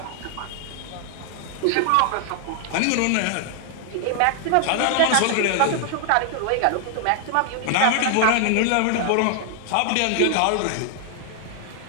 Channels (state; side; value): different; both; correlation 0.00